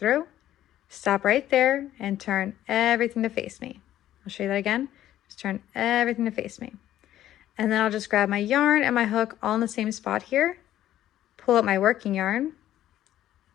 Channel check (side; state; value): right; quieter; 12.7 dB